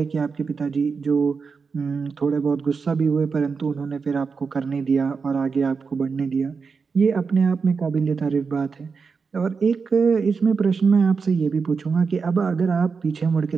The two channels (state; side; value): quieter; left; 5.2 dB